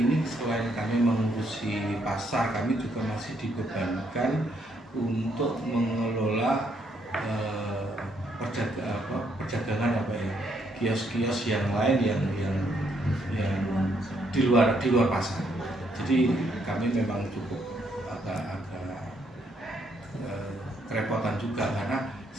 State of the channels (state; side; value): normal; both; correlation 0.73